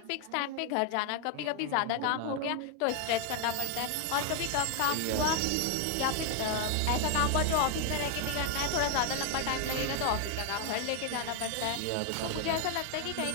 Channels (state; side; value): different; both; correlation 0.01